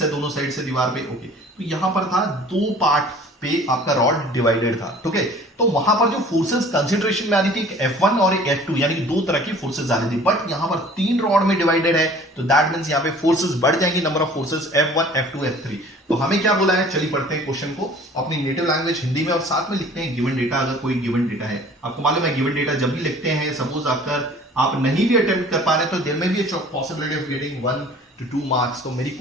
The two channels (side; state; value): both; normal; correlation 0.49